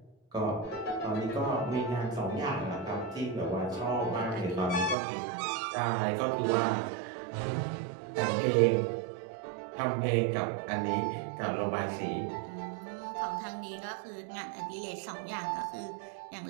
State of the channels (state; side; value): drops out; left; at 5.0 s